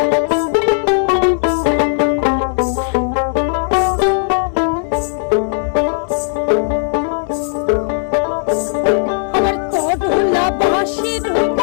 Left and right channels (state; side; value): silent; right; digital silence